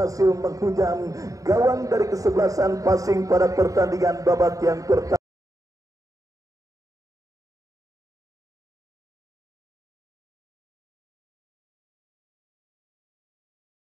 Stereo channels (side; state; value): left; late; 0.16 ms